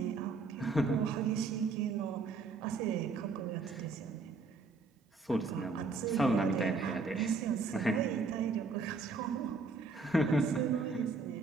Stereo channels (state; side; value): quieter; left; 4.1 dB